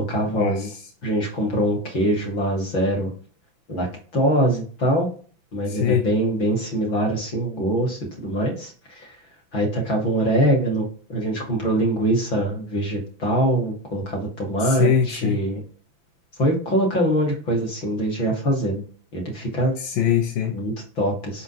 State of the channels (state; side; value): late; right; 5.9 ms